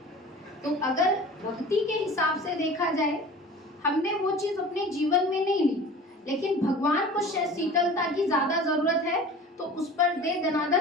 तो अगर भक्ति के हिसाब से देखा जाए, हमने वो चीज अपने जीवन में नहीं ली, लेकिन भगवान को शीतलता की ज्यादा जरूरत है, तो उस पर दे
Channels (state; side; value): normal; both; correlation 0.40